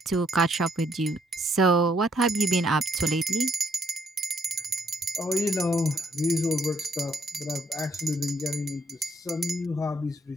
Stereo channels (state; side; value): normal; both; correlation 0.68